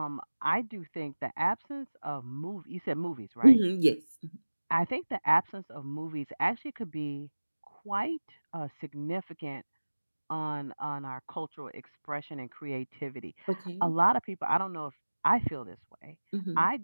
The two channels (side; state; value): both; inverted; correlation -1.00